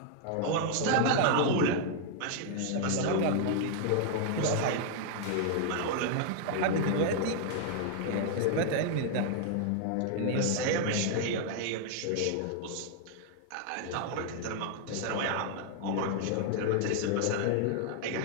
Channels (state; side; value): different; both; correlation 0.00